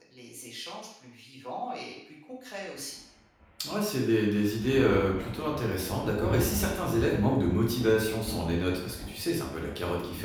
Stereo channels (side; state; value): both; identical; correlation 1.00